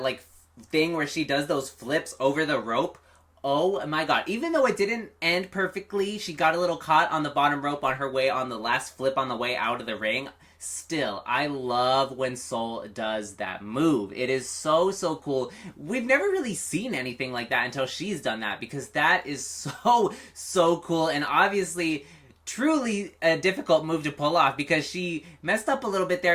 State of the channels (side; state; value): both; identical; correlation 1.00